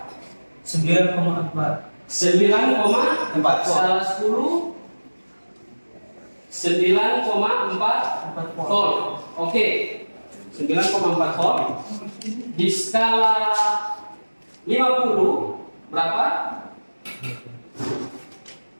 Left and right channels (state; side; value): inverted; both; correlation -1.00